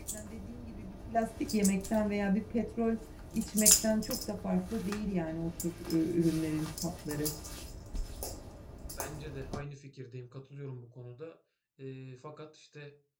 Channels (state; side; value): identical; both; correlation 1.00